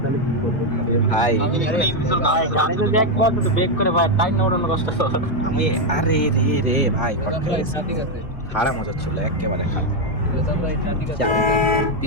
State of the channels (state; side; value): late; right; 1.8 ms